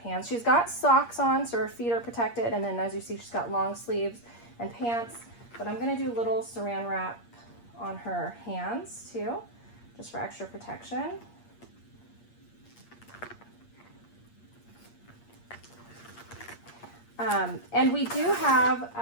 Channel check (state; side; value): late; right; 8.5 ms